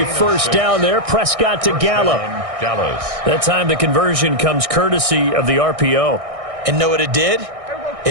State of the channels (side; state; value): left; late; 1.6 ms